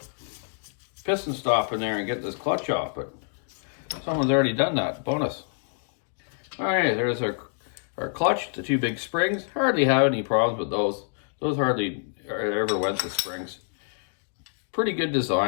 piston stop in there and get this clutch off, but someone's already done that. Bonus. All right, there's our clutch, the 2 big springs. Hardly have any problems with those. Those hardly ever went to springs. Pretty good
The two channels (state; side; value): silent; right; digital silence